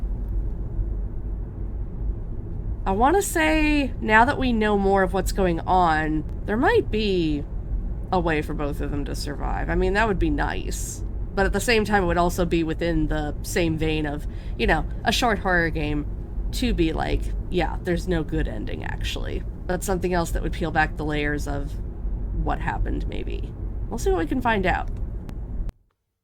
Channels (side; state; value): both; identical; correlation 1.00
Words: I want to say, now that we know more of what's going on, there might be a way for both of them to survive. I mean, that would be nice. But at the same time, it would also be within the same vein of, you know, a short horror game to be like, yeah, there's no good ending, actually. But something else that would peel back the layers of what happened, maybe. We'll see what we can find out.